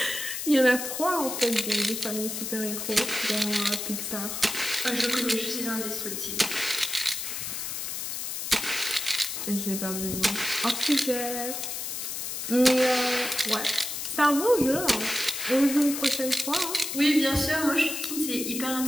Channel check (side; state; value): left; noise; hiss, 4 dB below the sound